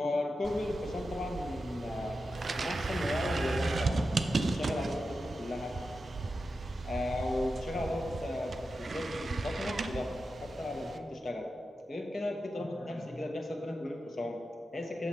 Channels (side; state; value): both; normal; correlation 0.90